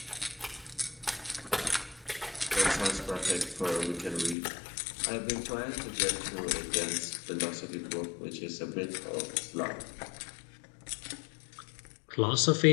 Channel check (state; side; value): drops out; right; at 4.4 s